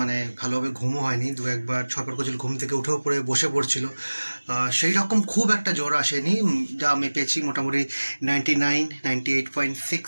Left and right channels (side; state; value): both; inverted; correlation -1.00